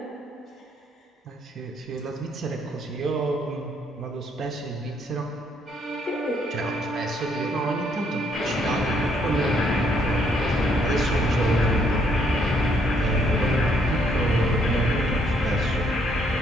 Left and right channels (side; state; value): both; normal; correlation 0.70